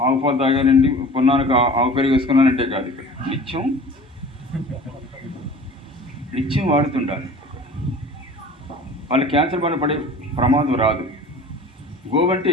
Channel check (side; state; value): both; normal; correlation 0.42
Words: ఆవు పాలు తాగానండి, పున్నానికి ఆవు పెరుగు వేసుకున్నానంటే కాదు. ఇక్కడ నిత్యం వాడుతుండాలి. వాళ్ళు క్యాన్సర్ బారిన పడే ప్రమాదం రాదు. గోవంటే